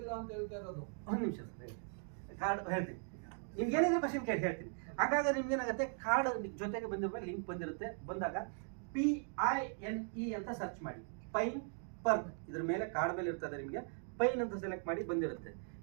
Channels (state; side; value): silent; left; 52 dB below the other